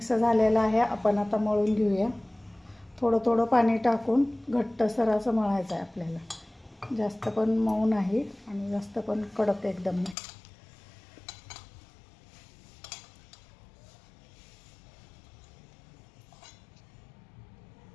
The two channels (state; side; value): drops out; right; at 10.2 s